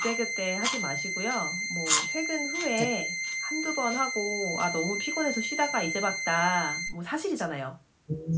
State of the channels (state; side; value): identical; both; correlation 1.00